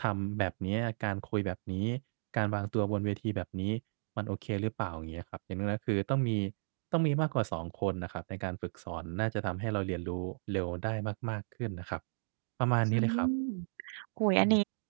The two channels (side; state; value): left; silent; digital silence